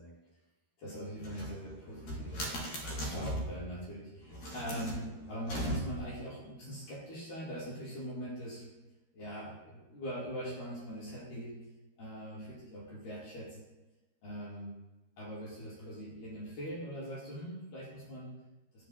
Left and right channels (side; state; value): right; late; 13 ms